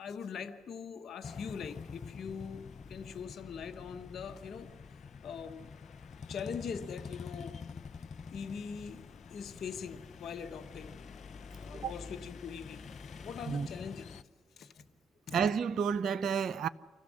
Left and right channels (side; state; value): both; normal; correlation 0.69